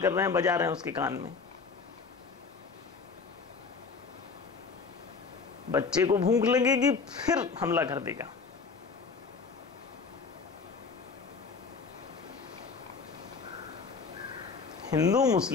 कर रहे हैं, बजा रहे हैं उसके कान में। बच्चे को भूख लगेगी फिर हमला कर देगा। हिंदू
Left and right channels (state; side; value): quieter; right; 4.9 dB